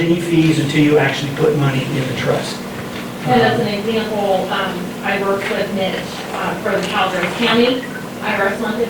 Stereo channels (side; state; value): both; identical; correlation 1.00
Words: fees until you actually put money in the trust. And as an example, I worked with Mitch for the Calaveras County IRS